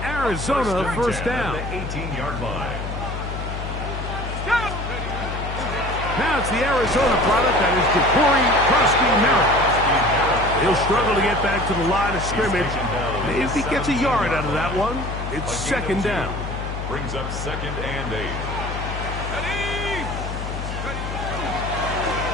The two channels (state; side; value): noise; left; hum, 6 dB below the sound